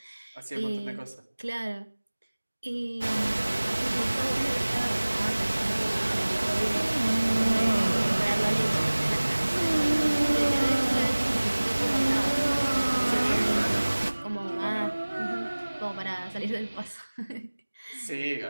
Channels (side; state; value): both; inverted; correlation -1.00